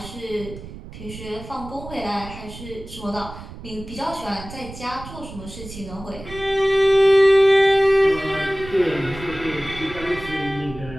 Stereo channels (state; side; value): noise; right; rumble, 14 dB below the sound